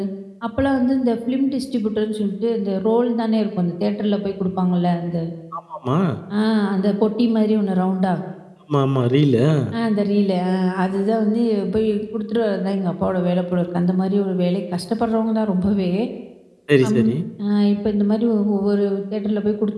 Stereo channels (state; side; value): identical; both; correlation 1.00